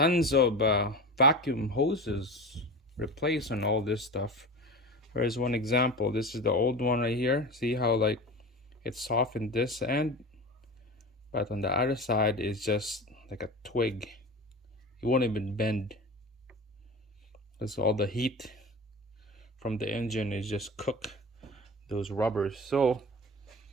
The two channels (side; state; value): both; normal; correlation 0.30